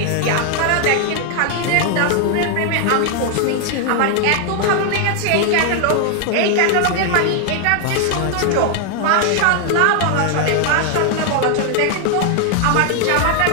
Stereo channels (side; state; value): both; different; correlation 0.00